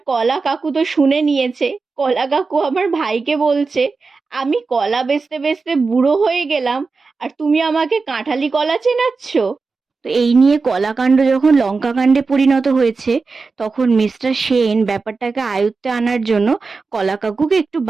কলা কাকু তো শুনে নিয়েছে। কলা কাকু আমার ভাইকে বলছে আমি কলা বেচতে বেচতে বুড়ো হয়ে গেলাম আর তুমি আমাকে কাঁঠালি কলা চেনাচ্ছ? তো এই নিয়ে কলাকাণ্ড যখন লঙ্কাকাণ্ডে পরিণত হয়েছে, তখন মিস্টার সেন ব্যাপারটাকে আয়ত্তে আনার জন্য কলা কাকুকে একটু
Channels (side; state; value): left; quieter; 4.3 dB